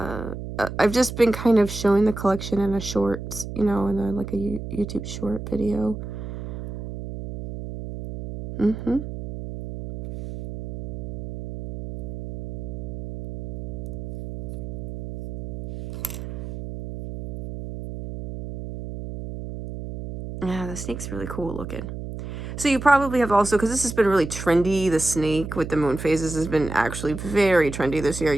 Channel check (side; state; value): right; noise; hum, 8 dB below the sound